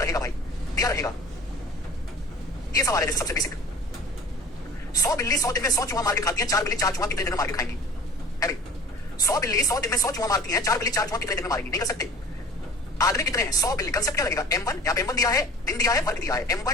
रहेगा भाई, दिया रहेगा। ये सवाल है जैसे सबसे बेसिक, 100 बिल्ली 100 दिन में 100 चूहा मार के खाती है, 4 बिल्ली 4 चूहा कितने दिन में मार के खाएंगी? है भाई 100 बिल्ली 100 दिन में 100 चूहा मारती हैं, 4 बिल्ली 4 चूहा कितने दिन में मारेंगी? नहीं कर सकते। आदमी कितने हैं? 100 बिल्ली। कंसेप्ट क्या लगेगा? M1, यहाँ पे M1 दिया है, दिन दिया है, वर्ग दिया है,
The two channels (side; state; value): both; normal; correlation 0.42